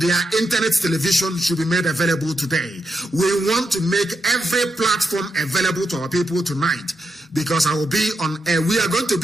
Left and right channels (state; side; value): normal; both; correlation 0.84